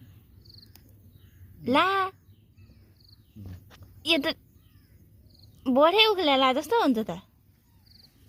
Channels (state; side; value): identical; both; correlation 1.00